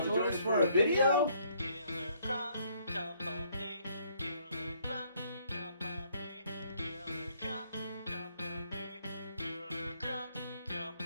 join us for a video?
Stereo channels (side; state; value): both; inverted; correlation -0.66